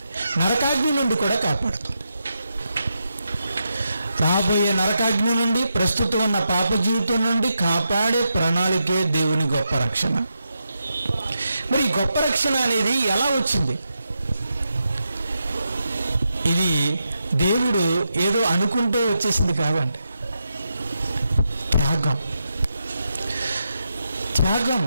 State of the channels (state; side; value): inverted; both; correlation -0.85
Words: నరకాగ్ని నుండి కూడా కాపాడుతుంది. రాబోయే నరకాగ్ని నుండి, ప్రస్తుతం ఉన్న పాప జీవితం నుండి కాపాడే ప్రణాళికే దేవుని గొప్ప రక్షణ. మరి ఈ గొప్ప రక్షణ అనేది ఎలా వచ్చింది? ఇది దేవుడు ఏదో అనుకుంటే వచ్చేసింది కాదండి. త్యాగం,